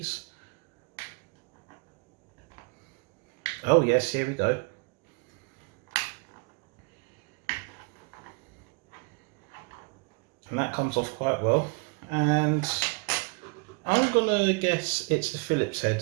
Oh yes, here we go. And that comes off quite well. And I'm going to guess it's a Phillips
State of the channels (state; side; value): quieter; left; 32.3 dB